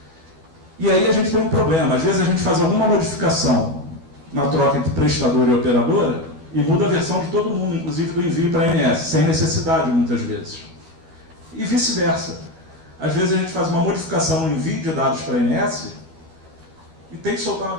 E aí a gente tem um problema. Às vezes a gente faz alguma modificação na troca entre prestador e operadora e muda a versão de todo mundo, inclusive do envio para a ANS, sem necessidade muitas vezes. E vice-versa. Às vezes a gente faz uma modificação no envio de dados para a ANS e tem que soltar uma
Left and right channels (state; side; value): late; left; 12 ms